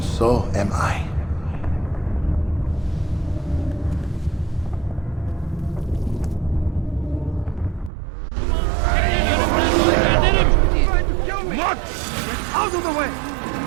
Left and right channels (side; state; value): left; drops out; at 7.9 s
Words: so am I. Out of the way!